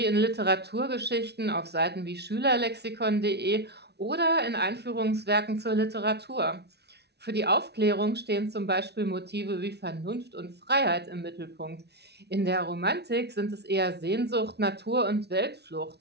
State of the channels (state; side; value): late; left; 0.49 ms